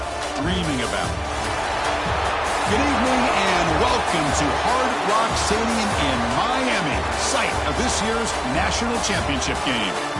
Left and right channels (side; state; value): both; identical; correlation 1.00